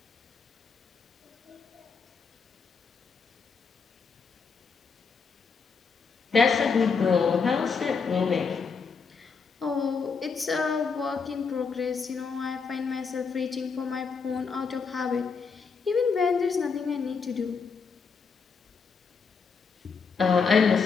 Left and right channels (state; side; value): quieter; right; 5.3 dB